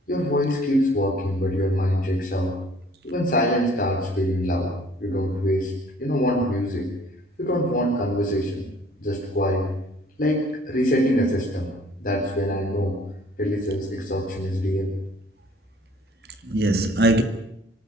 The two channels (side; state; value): both; normal; correlation 0.55